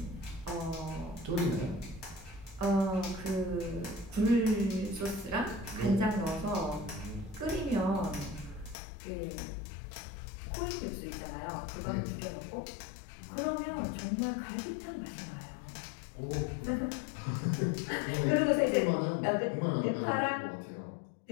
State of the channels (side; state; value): right; drops out; at 8.8 s